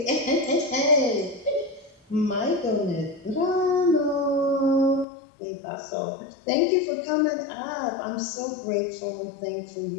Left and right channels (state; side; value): drops out; right; at 5.1 s